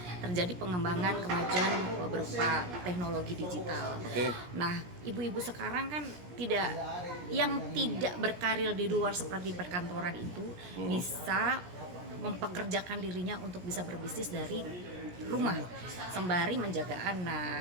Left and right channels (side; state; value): left; late; 17 ms